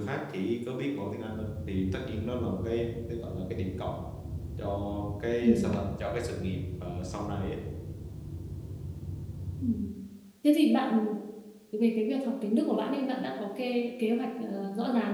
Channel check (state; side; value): identical; both; correlation 1.00